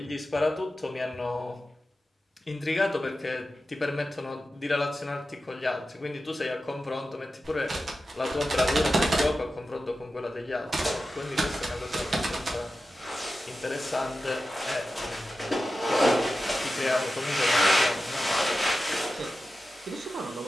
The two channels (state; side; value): normal; both; correlation 0.93